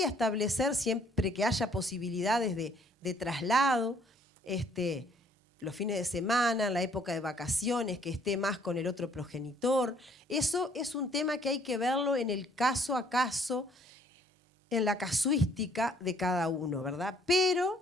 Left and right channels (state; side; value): normal; both; correlation 0.62